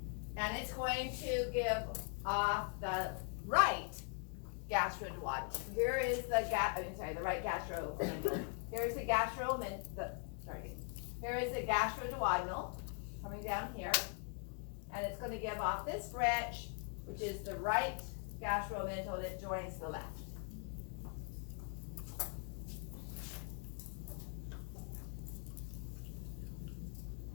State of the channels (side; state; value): right; quieter; 39.1 dB